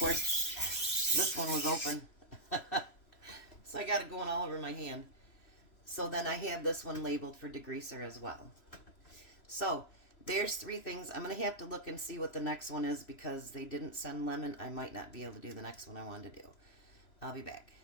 this one was open. So I got it going all over my hand. So then I have this one labeled for degreaser as well. So there's 3 things. I'm going to have to look and see what the next one is because they didn't send lemon. I might not be able to do the next one I wanted to do. I'll be back.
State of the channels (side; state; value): right; late; 3.0 ms